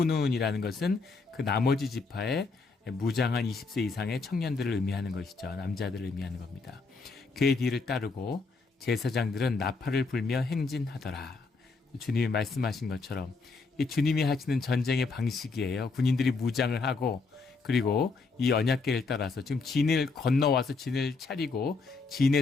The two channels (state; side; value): quieter; right; 4.2 dB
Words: 것은 그 나머지 지파의 무장한 20세 이상의 청년들을 의미하는 것이죠. 남자들을 의미하는 겁니다. 그의 뒤를 따르고 제사장들은 나팔을 불며 행진하더라. 주님이 말씀하신 것처럼 이 주님이 하시는 전쟁의 방식이에요. 군인들이 무장을 하고, 그리고 이 언약궤를 따라서 지금 진을 건너와서 진을 차리고